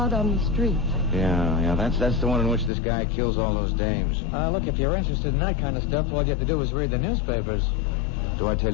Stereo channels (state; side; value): drops out; right; at 2.7 s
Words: on the Street. Yeah, that's the one in which this guy kills all those dames. Look, if you're interested in that kind of stuff, all you have to do is read the newspapers. Do I tell